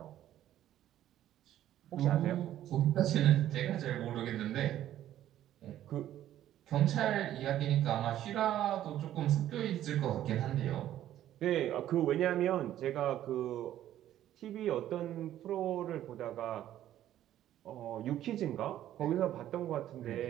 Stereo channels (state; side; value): quieter; left; 12.3 dB